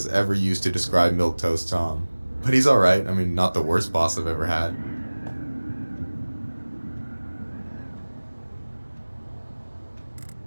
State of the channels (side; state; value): both; inverted; correlation -1.00